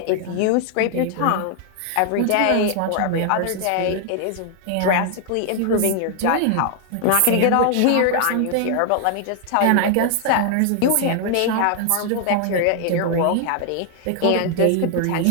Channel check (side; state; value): both; different; correlation 0.00